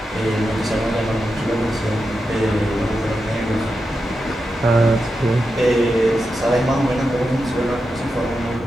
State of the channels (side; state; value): both; normal; correlation 0.88